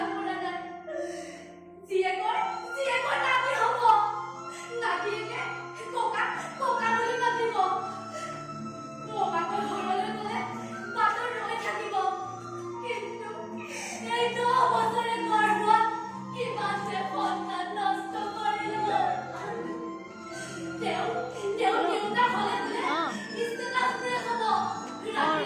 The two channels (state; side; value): identical; both; correlation 1.00